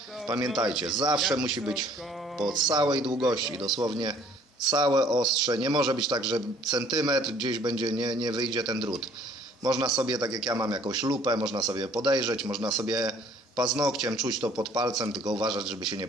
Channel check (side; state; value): both; normal; correlation 0.58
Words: Pamiętajcie, zawsze musi być po całej długości, dosłownie całe ostrze. Nie może być tak, że centymetr gdzieś będzie, nie wyjdzie ten drut. Można sobie, tak jak ja mam jakąś lupę, można sobie podejrzeć, można sobie paznokciem czuć to pod palcem, tylko uważać, żeby się nie